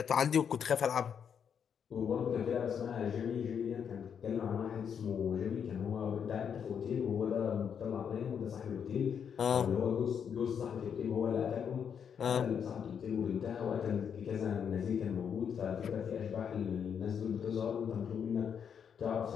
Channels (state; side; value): quieter; right; 7.6 dB